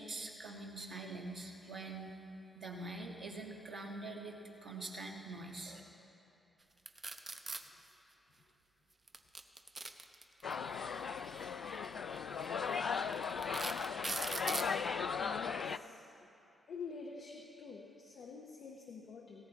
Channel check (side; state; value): right; quieter; 3.2 dB